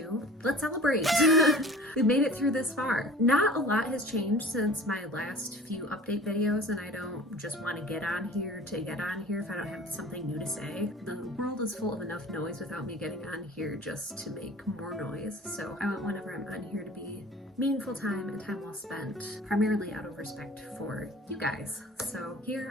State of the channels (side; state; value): both; normal; correlation 0.43